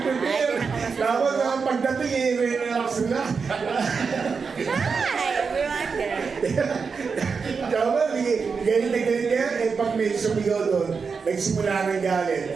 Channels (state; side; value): quieter; left; 5.3 dB